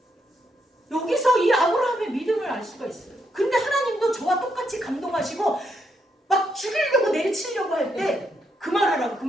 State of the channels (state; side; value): normal; both; correlation 0.78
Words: 여기서 이 아브라함의 믿음을 알 수가 있어요. 근데 하나님도 저와 똑같이 감동하시고 막 죽이려고 내리치려고 할 때